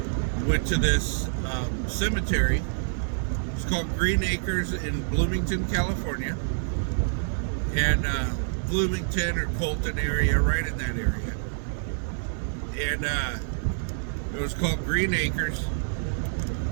went to this cemetery. It's called Green Acres in Bloomington, California, and Bloomington or Colton area, right in that area. And it was called Green Acres.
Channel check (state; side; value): silent; left; digital silence